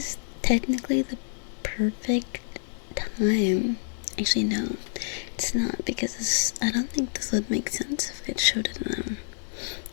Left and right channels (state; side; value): silent; right; 60 dB below the other